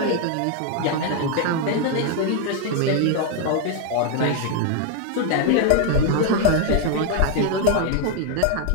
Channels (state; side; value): different; both; correlation 0.01